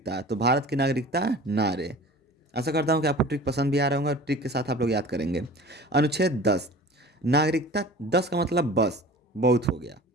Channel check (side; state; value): both; normal; correlation 0.41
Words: तो भारत की नागरिकता नारे। आशा करता हूँ कि आपको ट्रिक पसंद भी आ रहा होगा, ट्रिक के साथ आप लोग याद करेंगे। अनुच्छेद 10, नागरिकता 10 का मतलब बस बहुत हो गया,